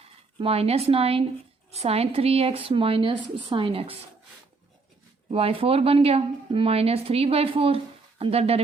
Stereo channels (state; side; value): quieter; left; 4.0 dB